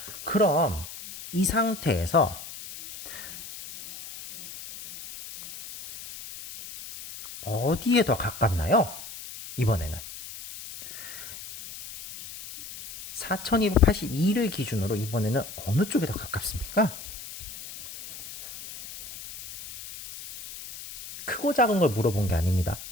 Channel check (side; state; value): left; noise; hiss, 13 dB below the sound